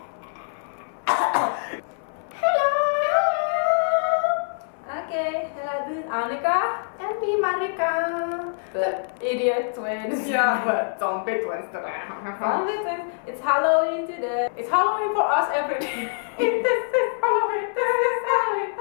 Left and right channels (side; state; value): right; silent; 62 dB below the other